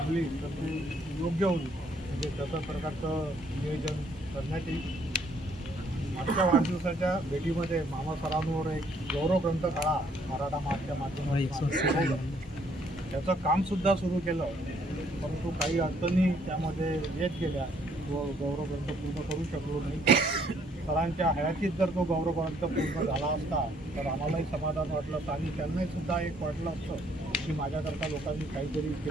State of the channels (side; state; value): both; normal; correlation 0.66